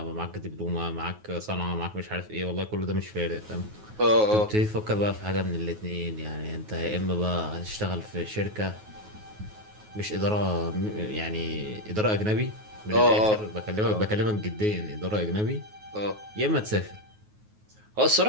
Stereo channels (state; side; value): late; left; 9.4 ms